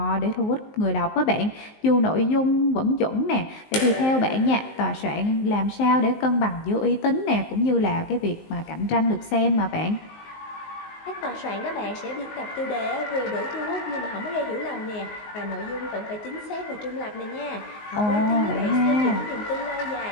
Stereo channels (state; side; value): late; right; 19 ms